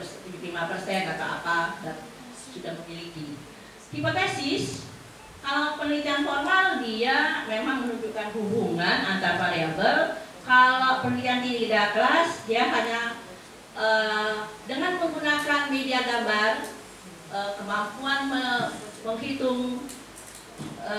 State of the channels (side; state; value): both; identical; correlation 1.00